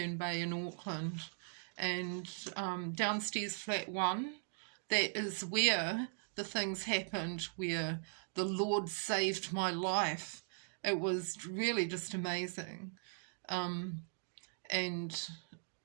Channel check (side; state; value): left; silent; digital silence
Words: Bay in Auckland. And downstairs flat 1, that is where the things happened, where the Lord saved my life. It was really just amazing. And